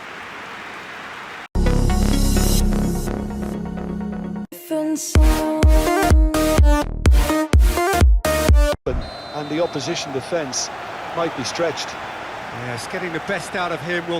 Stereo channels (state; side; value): identical; both; correlation 1.00